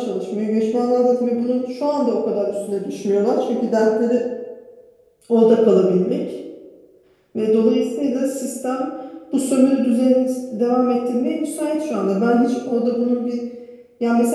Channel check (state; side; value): identical; both; correlation 1.00